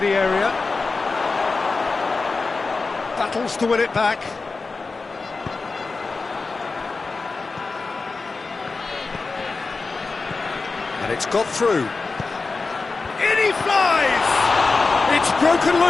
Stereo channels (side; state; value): right; quieter; 4.0 dB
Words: area. Battles to win it back. And it's got through. In he flies! It's broken